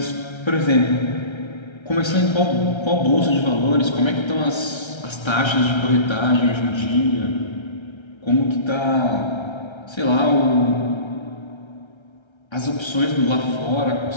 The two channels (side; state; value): right; late; 1.3 ms